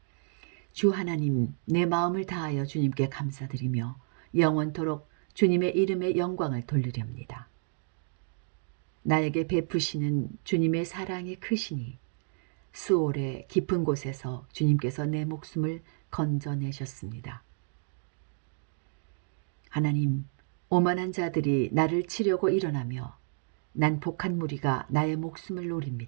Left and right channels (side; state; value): left; silent; 57 dB below the other